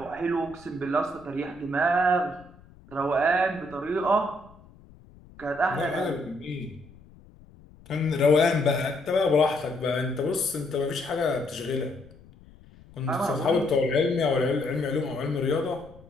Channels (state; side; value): noise; left; rumble, 24 dB below the sound